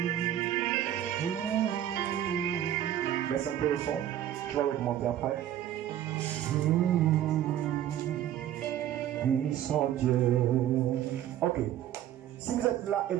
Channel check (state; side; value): quieter; left; 11.7 dB